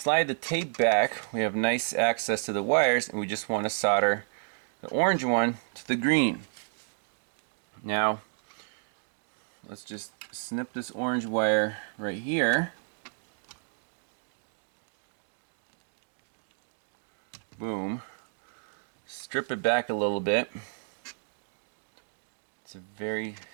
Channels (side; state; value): left; silent; digital silence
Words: the tape back, we have nice access to the wires, and we just want to solder the orange one to the green. Now, let's just snip this orange wire right here. Boom. Strip it back a little bit. It's a very